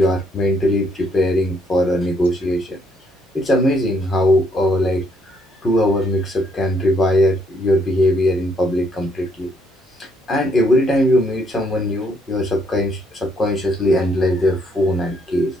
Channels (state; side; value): normal; both; correlation 0.70